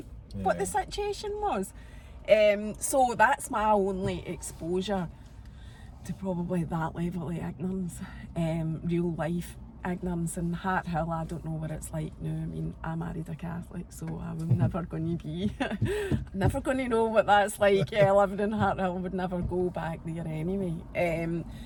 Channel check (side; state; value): both; identical; correlation 1.00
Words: the situation was. So that's my only exposure to probably that level of ignorance, real life ignorance. In Hart Hill, I don't know what it's like now. I mean, I married a Catholic, so I'm never going to be, never going to know what that's like. Living in Hart Hill, would never go back there anyway.